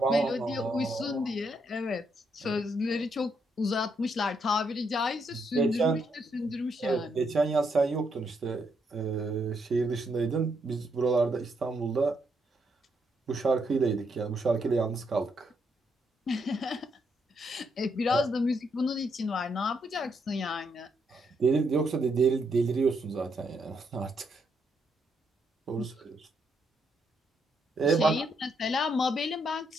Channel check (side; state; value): both; normal; correlation 0.76